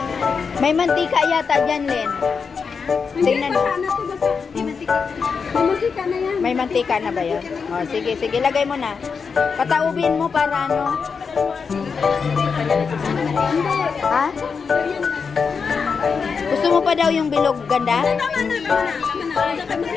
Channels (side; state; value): right; quieter; 5.6 dB